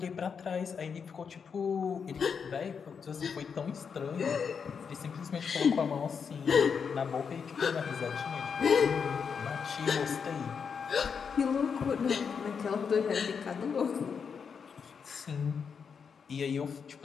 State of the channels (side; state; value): right; quieter; 6.3 dB